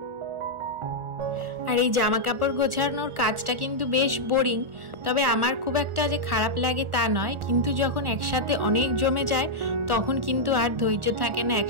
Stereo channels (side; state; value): left; late; 1.4 ms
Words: আর এই জামা কাপড় গোছানোর কাজটা কিন্তু বেশ বোরিং, তবে আমার খুব একটা যে খারাপ লাগে তা নয়, কিন্তু যখন একসাথে অনেক জমে যায় তখন কিন্তু আর ধৈর্য থাকে না